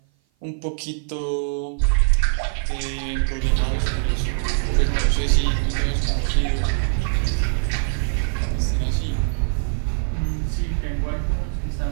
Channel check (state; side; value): silent; left; 56 dB below the other